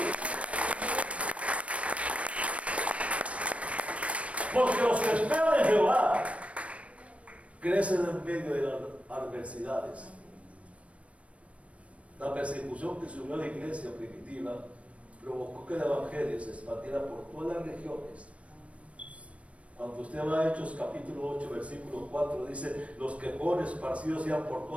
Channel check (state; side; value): late; left; 0.063 ms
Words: Porque los que esperan en Jehová crecen en medio de las adversidades. La persecución que subió a la iglesia primitiva provocó que el evangelio se expandiera por todas las regiones. Cuando usted va a Hechos capítulo 8 versículo 4, dice: los que fueron esparcidos iban por